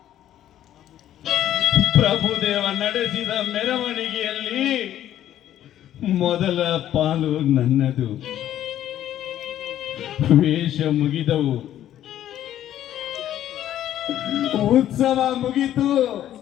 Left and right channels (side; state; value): right; quieter; 11.9 dB